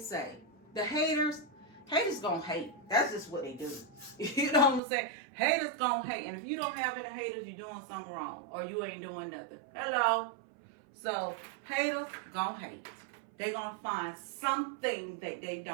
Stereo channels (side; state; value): left; drops out; at 4.8 s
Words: The haters gonna hate. That's just what they do. You know what I'm saying? Haters gonna hate. And if you don't have any haters, you're doing something wrong. Or you ain't doing nothing. Hello? So, haters gonna hate. They're gonna find something that they